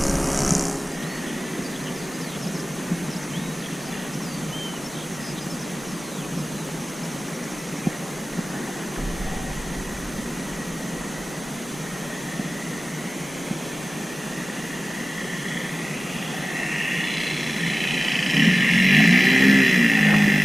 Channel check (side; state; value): both; normal; correlation 0.97